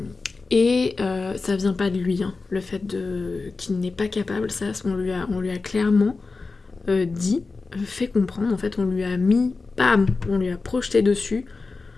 vient pas de lui, hein, le fait qu'il n'est pas capable, ça, on lui a clairement dit, fait comprendre, en fait, on lui a mis, bam, on lui a projeté dessus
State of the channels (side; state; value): right; quieter; 4.0 dB